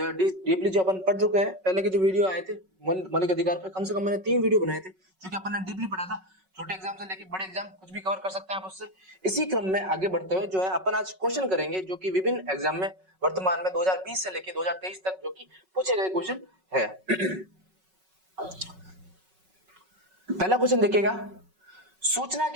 है डीपली जो अपन पढ़ चुके हैं। पहले के जो वीडियो आए थे मौलिक अधिकार पे कम से कम मैंने 3 वीडियो बनाए थे जो कि अपन ने डीपली पढ़ा था। छोटे एग्जाम से लेके बड़े एग्जाम कुछ भी कवर कर सकते हैं आप उससे। इसी क्रम में आगे बढ़ते हुए जो है अपन आज क्वेश्चन करेंगे जो कि विभिन्न एग्जाम में वर्तमान में 2020 से लेके 2023 तक जो कि पूछे गए क्वेश्चन है। पहला क्वेश्चन देखिएगा, सूचना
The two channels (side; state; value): left; late; 5.4 ms